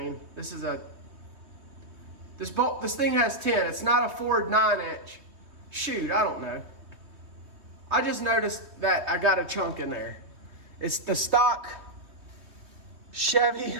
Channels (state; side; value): late; left; 3.2 ms